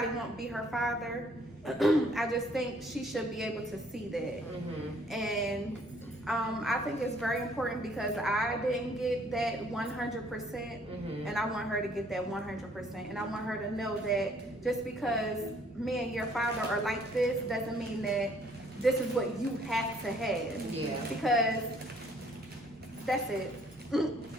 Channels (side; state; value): both; normal; correlation 0.62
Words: won't be her father, I just think she should be able to see that. And I think it's very important because I didn't get that 100%, and I want her to get that 100%. And I want her to know that just because me and your father are like this doesn't mean that this is what you have to have. Yeah. Because that's it.